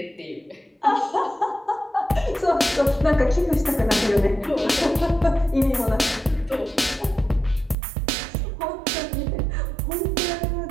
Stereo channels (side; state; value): left; drops out; at 7.8 s